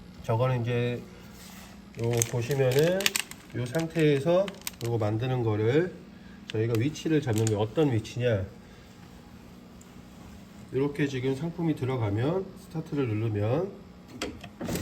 저거는 이제 요 보시면은 요 상태에서 요거 만드는 거를 저희가 위치를 잡는 게 어떤 위치냐, 이렇게 지금 상품이 들어가면 스타트를 누르면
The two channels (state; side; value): identical; both; correlation 1.00